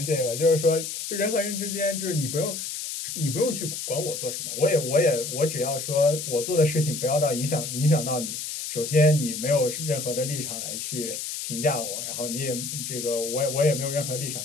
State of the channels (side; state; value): left; noise; hiss, 5 dB below the sound